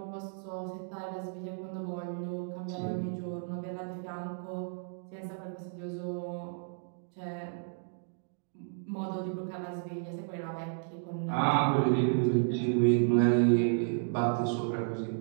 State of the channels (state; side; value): silent; left; digital silence